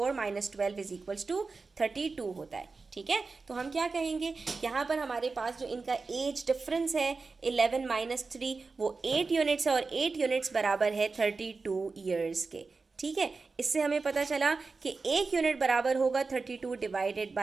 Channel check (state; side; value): quieter; left; 4.2 dB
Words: माइनस 12 इज इक्वल्स टू 32 होता है। ठीक है, तो हम क्या कहेंगे, यहाँ पर हमारे पास जो इनका एज डिफरेंस है 11 माइनस 3 वो 8 यूनिट्स है, और 8 यूनिट्स बराबर है 32 ईयर्स के। ठीक है, इससे हमें पता चला कि 1 यूनिट बराबर होगा 32 divided